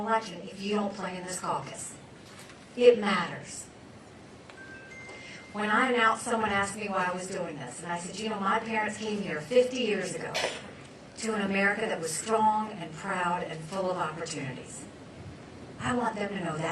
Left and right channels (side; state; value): both; identical; correlation 1.00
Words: election if you don't play in this caucus. It matters. When I announced, someone asked me why I was doing this. And I said, you know, my parents came here 50 years ago to an America that was strong and proud and full of opportunities. I want them to know